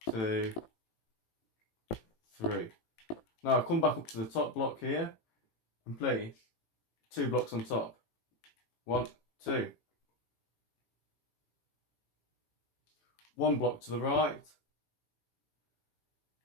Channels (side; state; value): right; late; 18 ms